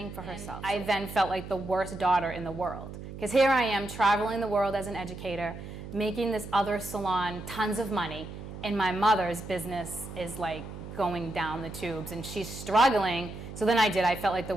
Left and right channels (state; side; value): noise; right; hum, 11 dB below the sound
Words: for herself. I then felt like the worst daughter in the world. Because here I am traveling the world as an educator, making this other salon tons of money, and my mother's business is like going down the tubes and she's struggling. So then I felt like the